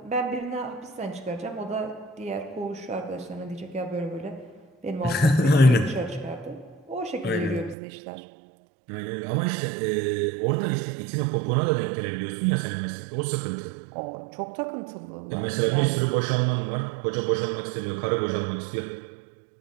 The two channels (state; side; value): drops out; left; at 7.8 s